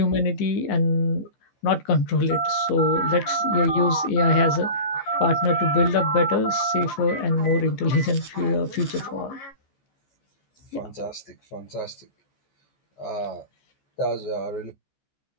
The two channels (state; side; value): late; right; 14 ms